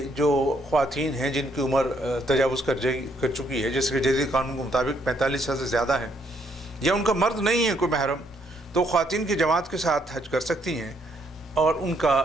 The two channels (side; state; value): both; normal; correlation 0.71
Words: جو خواتین ہیں جن کی عمر تجاوز کر چکی ہے، جیسے کہ جدید قانون کے مطابق 45 سال سے زیادہ ہیں، یا ان کا مرد نہیں ہے کوئی محرم، تو خواتین کی جماعت کے ساتھ حج کر سکتی ہیں اور ان کا